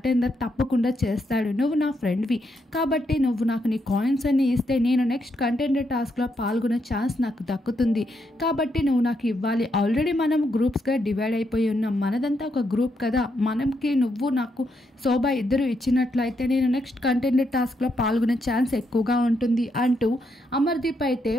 తప్పకుండా చేస్తాడు. నువ్వు నా ఫ్రెండ్వి కాబట్టి నువ్వు నాకు నీ కాయిన్స్ అన్ని ఇస్తే నేను నెక్స్ట్ కంటెండర్ టాస్క్లో పాల్గొనే ఛాన్స్ నాకు దక్కుతుంది. కాబట్టి నువ్వు నాకు ఇవ్వాలి. ఆల్రెడీ మనం గ్రూప్స్గా డివైడ్ అయిపోయి ఉన్నాం. మనదంతా ఒక గ్రూప్ కదా. మనకి నువ్వు నాకు శోభ ఇద్దరు ఇచ్చినట్లయితే నేను నెక్స్ట్ కంటెండర్ టాస్క్లో పాల్గొనే ఛాన్స్ ఎక్కువగా ఉంటుంది అంటూ అమర్దీప్ అయితే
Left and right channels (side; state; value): both; normal; correlation 0.79